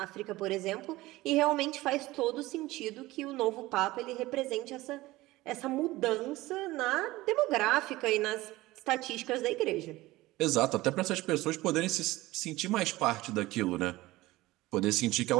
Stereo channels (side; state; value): left; quieter; 18.6 dB